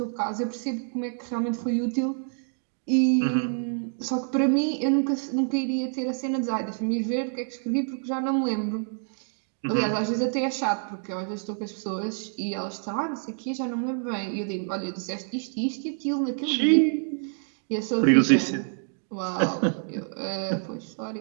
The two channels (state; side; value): silent; left; digital silence